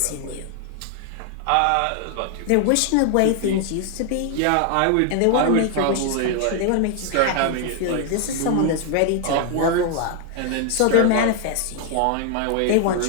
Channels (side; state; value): both; different; correlation 0.00